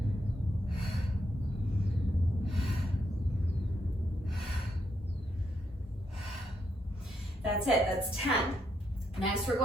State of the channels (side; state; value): both; normal; correlation 0.78